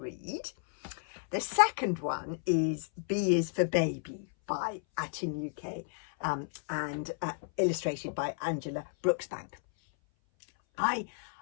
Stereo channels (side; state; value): right; silent; 56 dB below the other